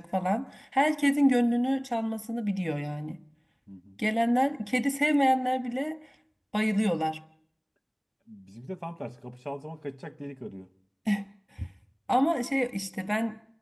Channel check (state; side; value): identical; both; correlation 1.00